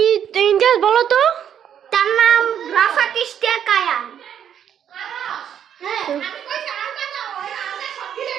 ইমতিয়াজ বলো তো। তার নাম রাফাত ইশতিয়াক কায়ান।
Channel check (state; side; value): quieter; left; 9.1 dB